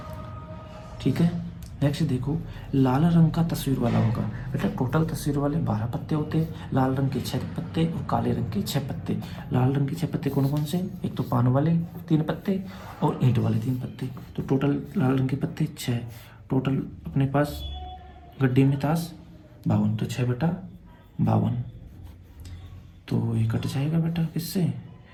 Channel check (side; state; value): both; identical; correlation 1.00